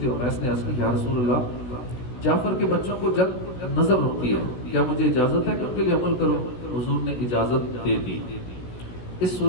امیس نے عرض کی یا رسول اللہ، جعفر کے بچوں کو جب نظر ہوتی ہے کیا مجھے اجازت ہے کہ ان کے لیے عمل کروں؟ حضور نے اجازت دے دی۔ اس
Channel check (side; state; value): right; late; 16 ms